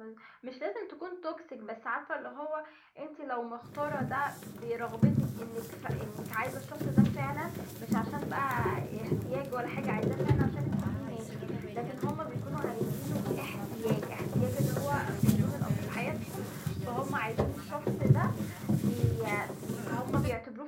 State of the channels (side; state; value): both; identical; correlation 1.00